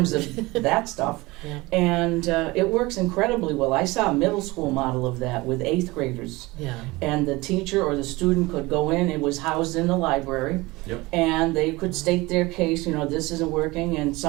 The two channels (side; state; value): left; quieter; 21.9 dB